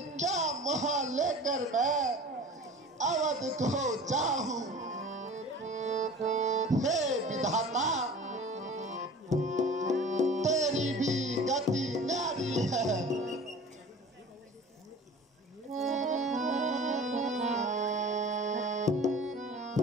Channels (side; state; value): both; normal; correlation 0.41